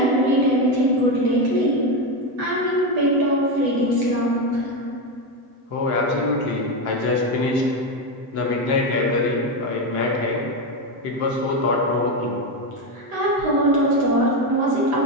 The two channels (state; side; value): late; left; 7.9 ms